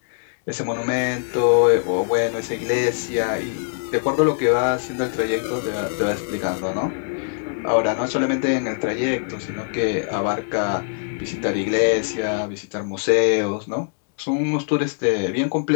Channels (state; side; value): silent; right; digital silence